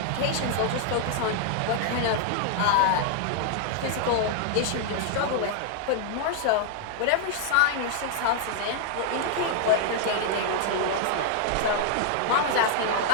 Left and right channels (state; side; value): different; both; correlation 0.00